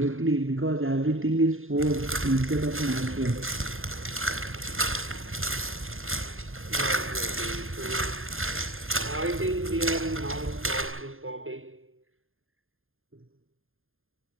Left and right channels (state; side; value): late; left; 0.60 ms